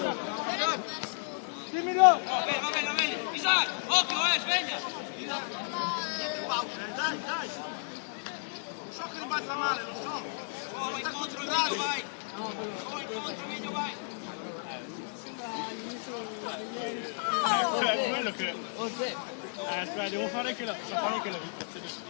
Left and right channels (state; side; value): silent; right; digital silence